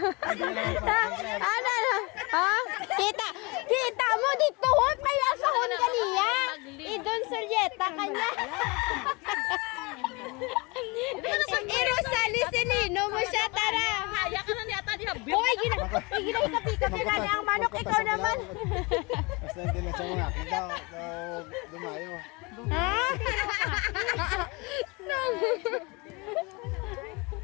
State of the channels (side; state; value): right; quieter; 27.1 dB